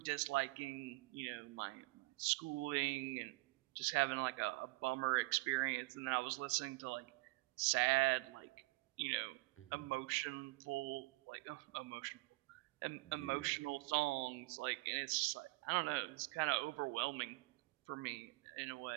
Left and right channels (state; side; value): quieter; left; 23.8 dB